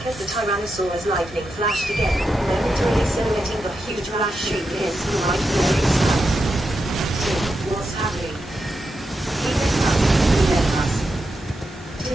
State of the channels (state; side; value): normal; both; correlation 0.87